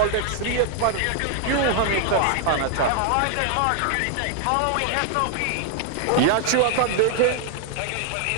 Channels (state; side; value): different; both; correlation 0.00